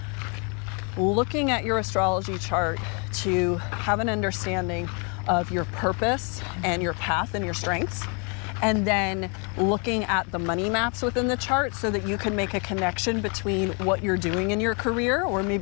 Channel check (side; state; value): right; quieter; 35.6 dB